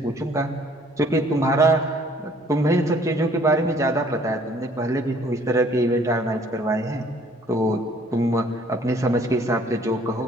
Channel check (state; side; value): normal; both; correlation 0.58